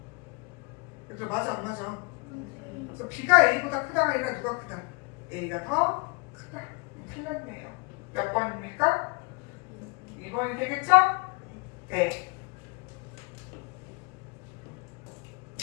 그래도 맞아 안 맞아? 그래서 B가 A보다 크다가 아니라 누가 크다? A가 더 크다. 틀렸네요. 몇 번입니까? 2번이 되겠죠? 네.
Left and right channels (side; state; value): right; quieter; 30.0 dB